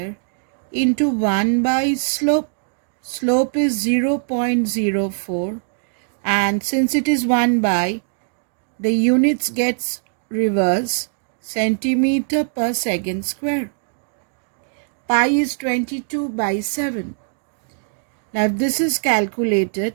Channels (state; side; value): silent; left; digital silence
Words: into 1 by slope. Slope is 0.04, and since it is 1 by, the units gets reverse, centimeter per second square. Pi is 22 by 7. Now if this is